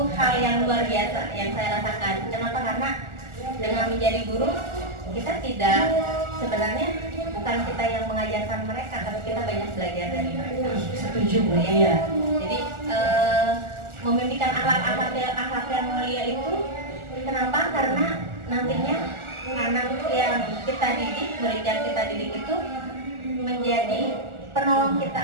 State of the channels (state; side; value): late; left; 1.4 ms